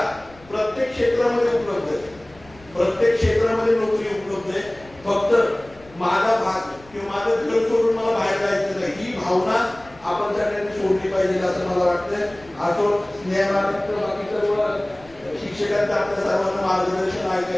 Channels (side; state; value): left; noise; rumble, 24 dB below the sound